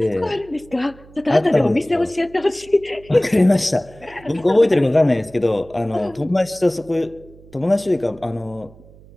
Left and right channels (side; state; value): right; noise; hum, 23 dB below the sound